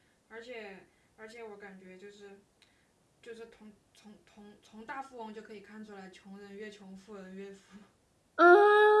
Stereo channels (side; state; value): both; identical; correlation 1.00